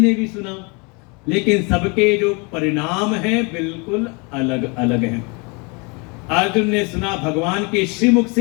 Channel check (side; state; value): right; quieter; 30.7 dB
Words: ने भी सुना। लेकिन सबके जो परिणाम हैं बिल्कुल अलग अलग हैं। अर्जुन ने सुना भगवान के श्रीमुख